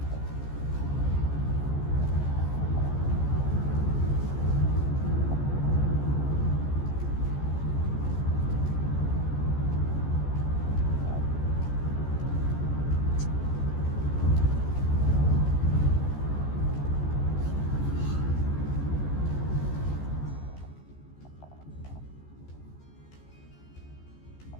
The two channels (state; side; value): late; right; 14 ms